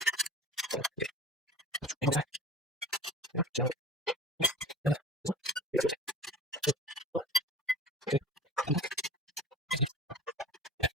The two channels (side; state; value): both; normal; correlation 0.39